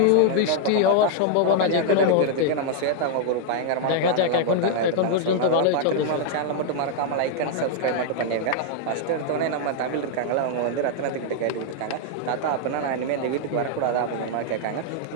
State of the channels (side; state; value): both; different; correlation 0.00